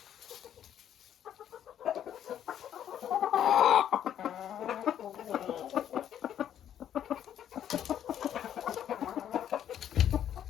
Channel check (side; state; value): right; quieter; 10.2 dB